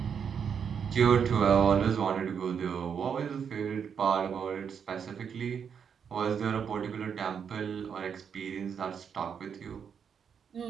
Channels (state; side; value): quieter; left; 7.2 dB